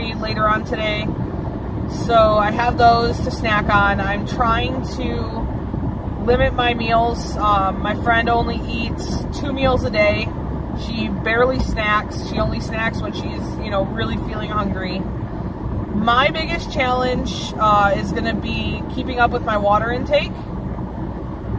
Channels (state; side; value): identical; both; correlation 1.00